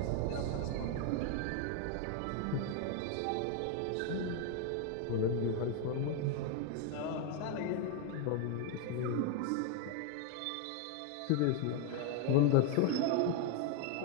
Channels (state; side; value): different; both; correlation 0.01